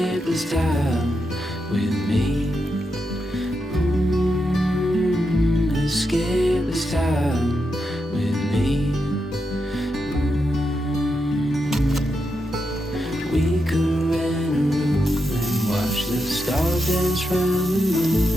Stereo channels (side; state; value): both; normal; correlation 0.85